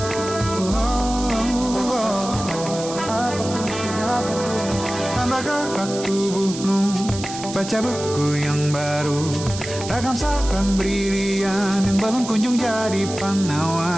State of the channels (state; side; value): noise; right; hiss, 10 dB below the sound